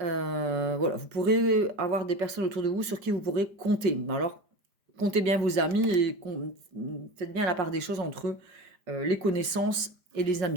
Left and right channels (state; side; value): late; left; 5.0 ms